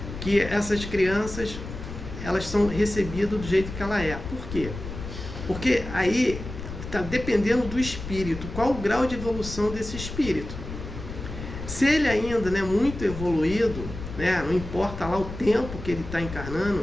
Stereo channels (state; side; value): noise; left; rumble, 9 dB below the sound